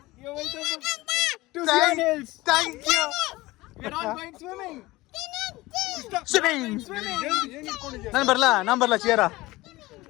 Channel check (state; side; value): quieter; right; 19.7 dB